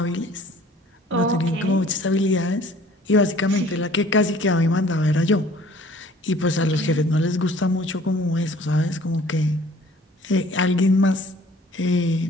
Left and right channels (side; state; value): both; normal; correlation 0.53